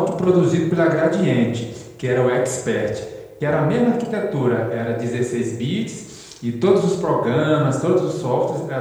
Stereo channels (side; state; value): both; identical; correlation 1.00